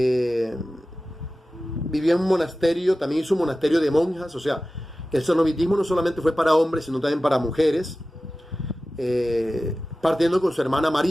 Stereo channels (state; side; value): normal; both; correlation 0.95